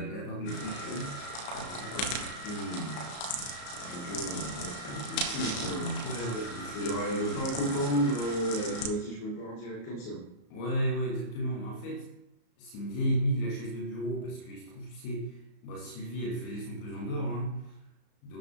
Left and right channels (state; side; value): late; right; 34 ms